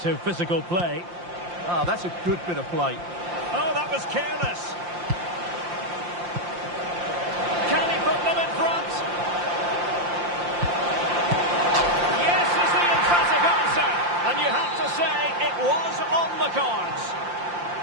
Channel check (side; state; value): left; late; 5.7 ms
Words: physical play. Ah, that's a good bit of play. Oh, that was careless. Can he put them in front? Yes is the emphatic answer. And you have to say it was on the cards.